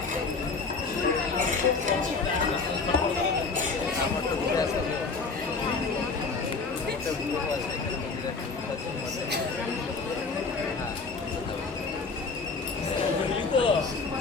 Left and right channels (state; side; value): quieter; right; 4.4 dB